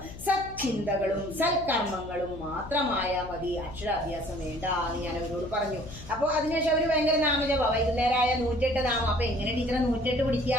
സത്ചിന്തകളും സൽക്കർമ്മങ്ങളും മാത്രമായാൽ മതി. അക്ഷരാഭ്യാസം വേണ്ട എന്ന് ഞാൻ അവരോട് പറഞ്ഞു. അപ്പൊ അതിനുശേഷം അവര് ഭയങ്കര നാമജപ, വൈകുന്നേരമായ 108 നാമം. അപ്പൊ എങ്ങനെ ടീച്ചറെ 108 പിടിക്കുക?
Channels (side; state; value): left; noise; hum, 14 dB below the sound